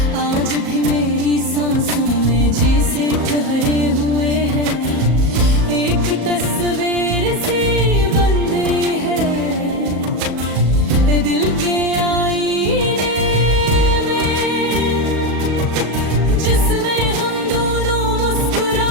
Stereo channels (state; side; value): late; left; 37 ms